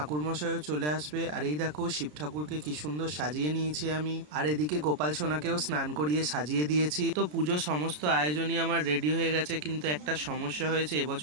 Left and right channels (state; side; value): late; left; 33 ms